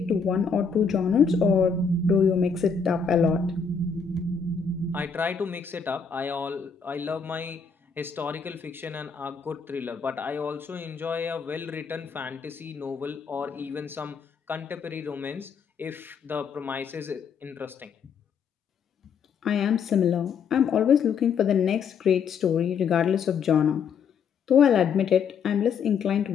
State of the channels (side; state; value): right; quieter; 6.0 dB